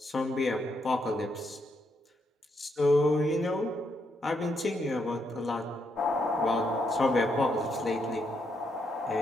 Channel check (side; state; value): both; normal; correlation 0.78